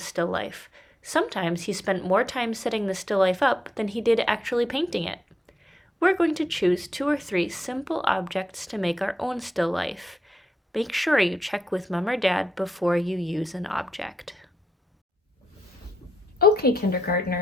life. Sometimes he spent more time setting the still life up than he did actually painting it. We're going to choose 2 or 3 simple objects to make our own still life. Make sure you check with Mom or Dad before you use an object. Okay,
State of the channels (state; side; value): normal; both; correlation 0.83